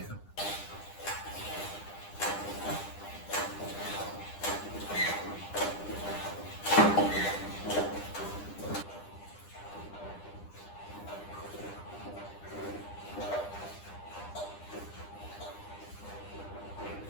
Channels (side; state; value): right; late; 9.9 ms